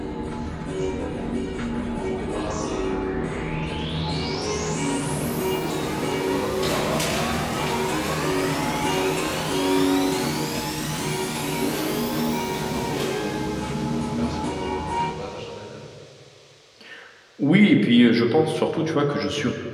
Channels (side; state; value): both; identical; correlation 1.00